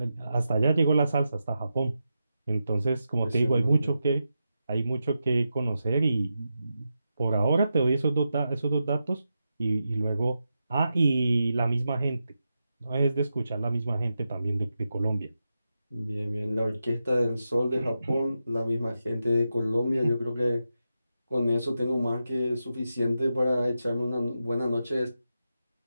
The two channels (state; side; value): inverted; both; correlation -0.89